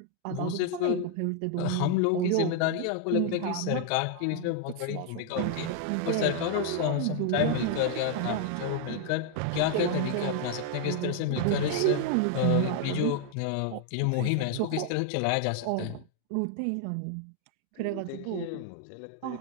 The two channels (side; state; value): both; different; correlation 0.00